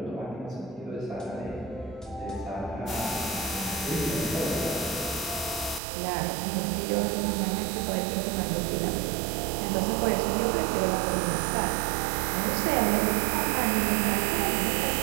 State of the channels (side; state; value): left; drops out; at 5.8 s